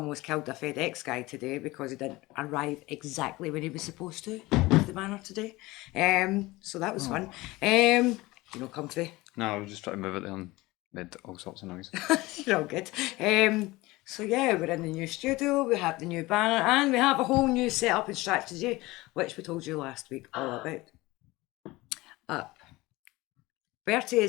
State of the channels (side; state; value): right; quieter; 20.6 dB